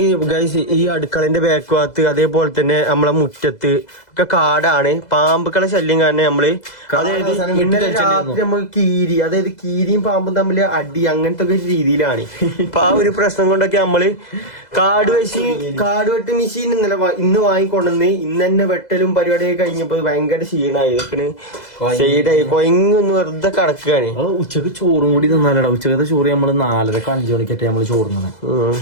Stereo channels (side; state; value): right; late; 2.0 ms